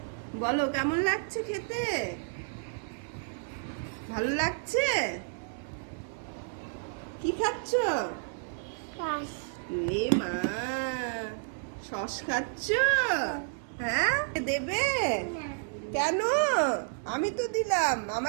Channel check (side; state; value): left; silent; digital silence